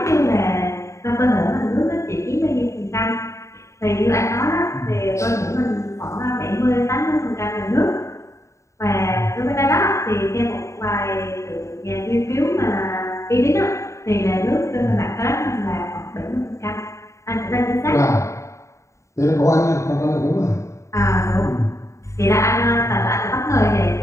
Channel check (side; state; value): right; late; 0.14 ms